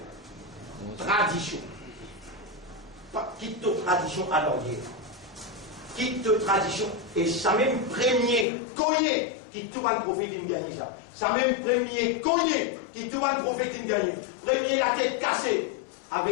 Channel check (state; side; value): drops out; right; at 8.5 s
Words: Tradition. Quitte ta tradition à l'arrière. Quitte ta tradition. Et ça même premier cogné qui tout va le prophète qui me gagne ça. Ça même premier cogné qui tout va le prophète qui me gagne. Premier la tête cassée